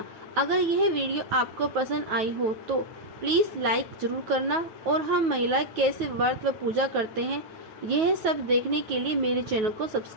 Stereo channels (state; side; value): late; left; 9.3 ms